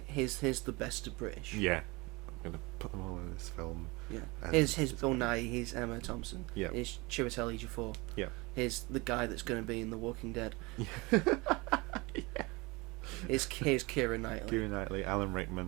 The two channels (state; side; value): quieter; left; 24.8 dB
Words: here's the best of British. Yeah, I'm gonna put them all in this film. Yeah. And Here's it's Bill amazing. Nye, here's Emma Thompson. Yeah. Here's Chiwetel Ejiofor. Yeah. Here's the guy that's going to be in The Walking Dead. Yeah. Here's Keira Knightley. Keira Knightley, Alan